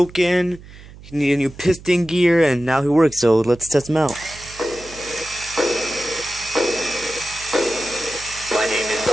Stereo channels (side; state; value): right; noise; hum, 19 dB below the sound